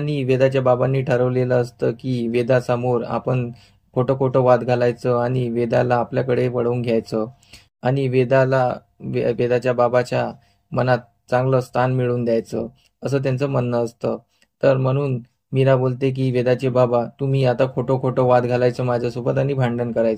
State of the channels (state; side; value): identical; both; correlation 1.00